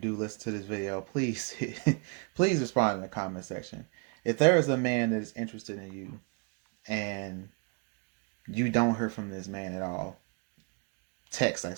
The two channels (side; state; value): left; quieter; 35.0 dB